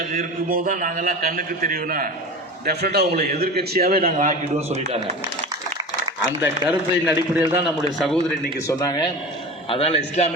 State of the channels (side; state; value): both; normal; correlation 0.31